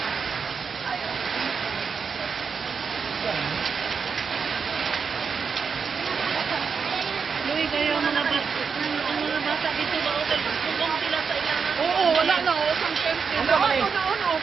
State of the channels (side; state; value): left; quieter; 5.8 dB